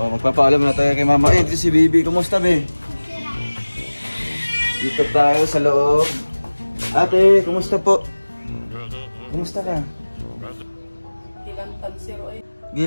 magpapaalam na tayo kay mama. Ito si Bibi, kumusta be? Dito tayo sa loob. Ate, kumusta po? Kumusta ka? Gilantan sir oy.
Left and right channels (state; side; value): inverted; both; correlation -1.00